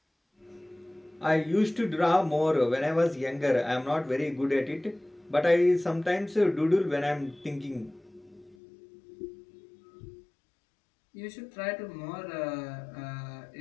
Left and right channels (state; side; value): drops out; right; at 8.6 s